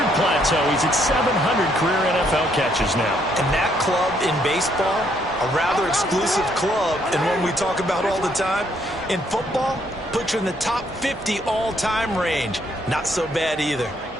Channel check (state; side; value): normal; both; correlation 0.70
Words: plateau. He's at 700 career NFL catches now. And that club in baseball, a rather exclusive club, and one we talk about all the time. In football, puts you in the top 50 all-time range. Not so bad either.